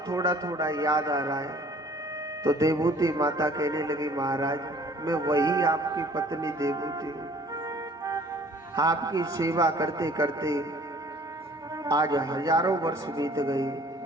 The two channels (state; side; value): normal; both; correlation 0.53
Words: थोड़ा थोड़ा याद आ रहा है। तो देवूती माता कहने लगी, महाराज मैं वही आपकी पत्नी देवूती हूँ। आपकी सेवा करते करते आज हजारों वर्ष बीत गए।